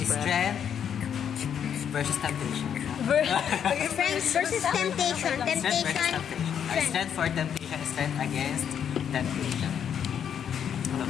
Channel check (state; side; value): quieter; right; 8.5 dB